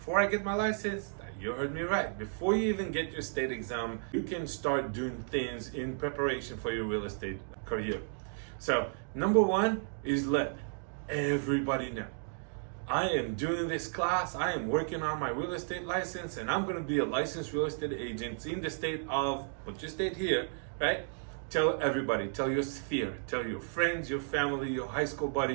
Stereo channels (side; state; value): left; silent; digital silence